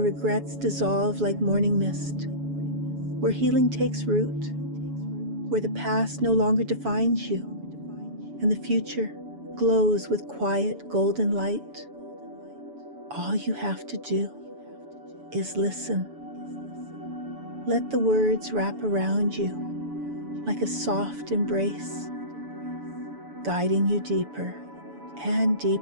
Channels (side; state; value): left; late; 7.0 ms